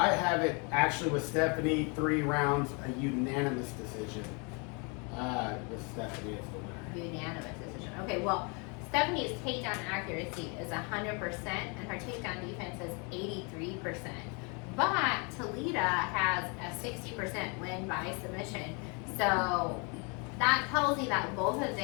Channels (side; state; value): right; quieter; 33.1 dB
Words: have it actually with Stephanie 3 rounds, a unanimous decision. With Stephanie as the winner. Unanimous decision. Okay, well, Stephanie's takedown accuracy is 100%, and her takedown defense is 83%. But Talita has a 60% win by submission. So that tells you that both of